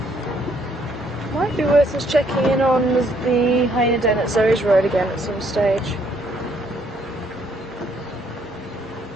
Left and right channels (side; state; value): both; normal; correlation 0.68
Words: Might be worth us checking in on the hyena den at Zoe's Road again at some stage.